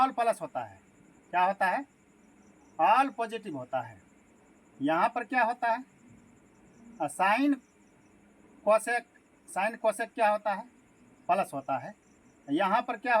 प्लस होता है, क्या होता है? ऑल पॉजिटिव होता है। यहाँ पर क्या होता है? साइन कोसेक क्या होता है? प्लस होता है। यहाँ पर क्या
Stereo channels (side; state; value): both; identical; correlation 1.00